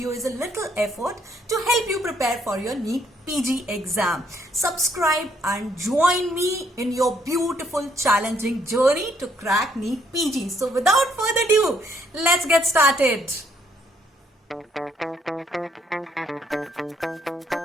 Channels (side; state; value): both; normal; correlation 0.69